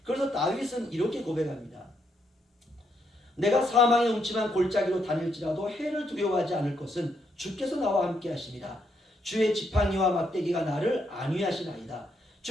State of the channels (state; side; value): normal; both; correlation 0.77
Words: 그래서 다윗은 이렇게 고백합니다. 내가 사망의 음침한 골짜기로 다닐지라도 해를 두려워하지 않을 것은 주께서 나와 함께 하십니다. 주의 지팡이와 막대기가 나를 안위하시나이다.